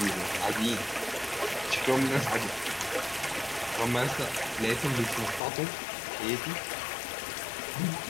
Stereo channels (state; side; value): drops out; right; at 5.4 s